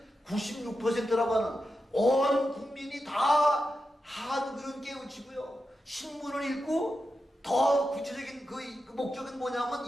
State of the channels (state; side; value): normal; both; correlation 0.89